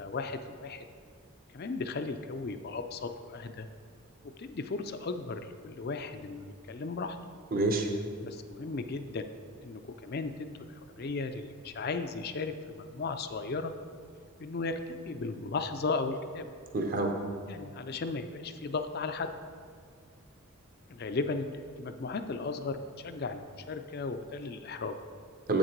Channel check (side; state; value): both; normal; correlation 0.17